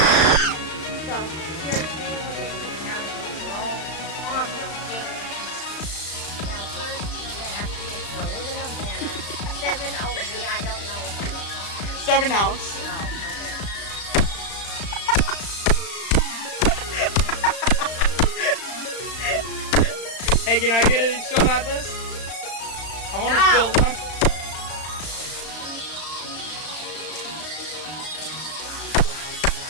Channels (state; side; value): late; right; 35 ms